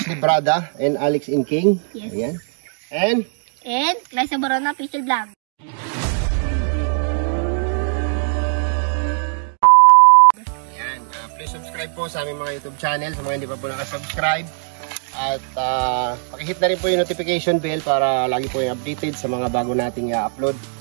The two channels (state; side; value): silent; left; 66 dB below the other